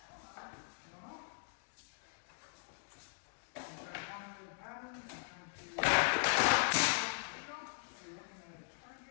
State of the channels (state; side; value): silent; right; digital silence